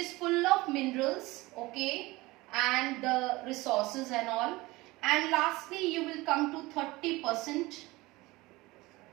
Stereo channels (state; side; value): quieter; left; 20.9 dB